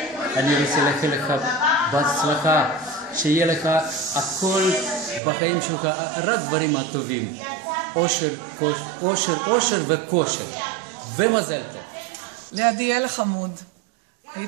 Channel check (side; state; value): left; drops out; at 5.2 s